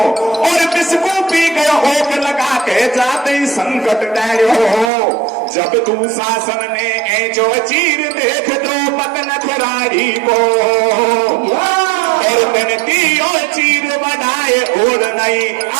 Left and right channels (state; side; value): drops out; left; at 4.9 s